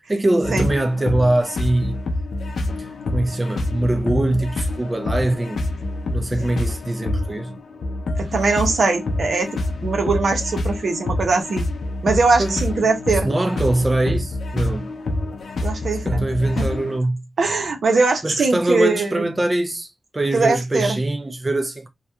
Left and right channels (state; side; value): normal; both; correlation 0.91